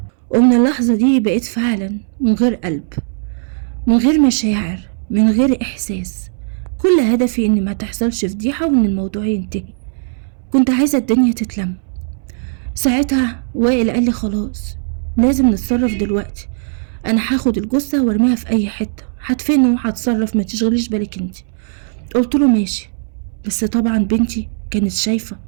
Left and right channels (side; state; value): left; silent; 66 dB below the other